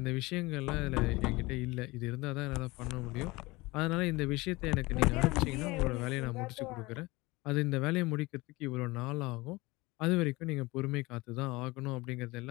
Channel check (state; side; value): quieter; right; 22.2 dB